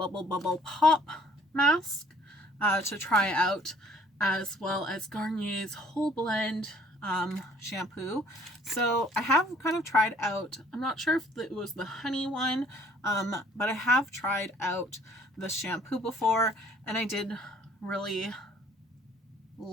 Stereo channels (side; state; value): both; normal; correlation 0.58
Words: Pop mask to try out, as well as Garnier's Whole Blend shampoo. So I have kind of tried out, I'm not sure if it was the honey one, but I have tried out the shampoo before, and I did really